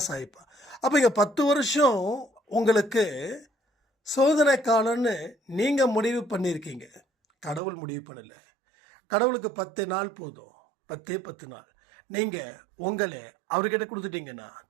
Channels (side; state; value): left; drops out; at 7.6 s